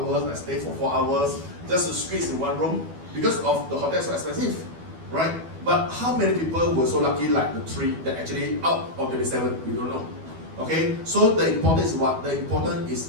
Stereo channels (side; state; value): left; late; 12 ms